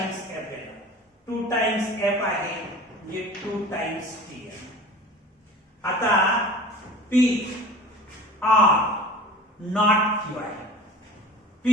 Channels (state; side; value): normal; both; correlation 0.40